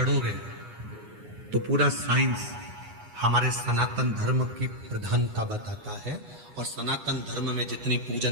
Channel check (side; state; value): left; late; 9.3 ms